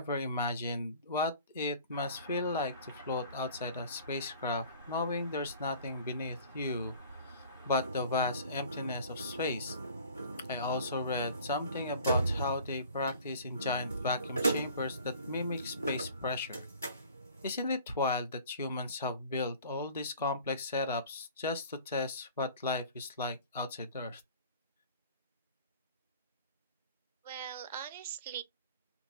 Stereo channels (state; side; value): inverted; both; correlation -0.48